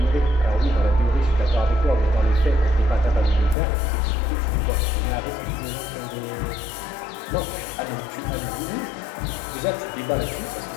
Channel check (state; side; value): drops out; right; at 3.6 s